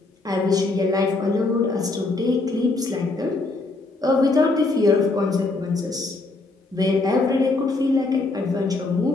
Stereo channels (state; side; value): quieter; right; 3.3 dB